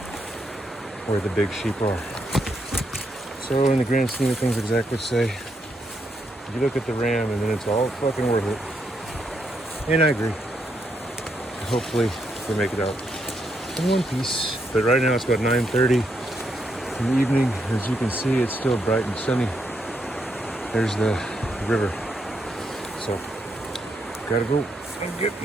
where the big sheep are. So in the grand scheme of things, exactly say You look at the RAM and then it's all fucking worth it. And I agree. Hopefully we make it out in one piece. But right now it's about 9:30 in the evening. As you can see, it's still bright and sunny. There's the river. So gotta go and get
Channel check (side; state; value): both; normal; correlation 0.79